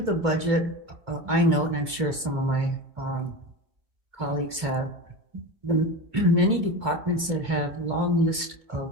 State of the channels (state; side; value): late; left; 2.3 ms